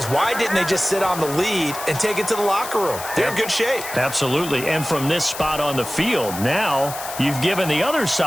why didn't they just sit on the lead and take it to the locker room? They're in good shape. Absolutely. And from this spot on the field, now you've given the other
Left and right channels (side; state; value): left; noise; hiss, 10 dB below the sound